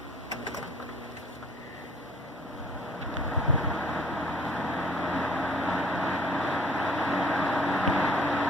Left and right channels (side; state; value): both; normal; correlation 0.55